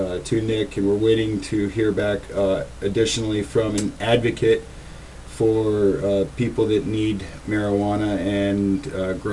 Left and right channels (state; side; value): identical; both; correlation 1.00